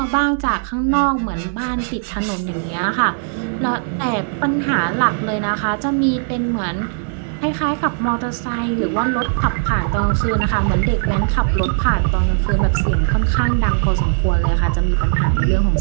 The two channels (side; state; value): left; silent; digital silence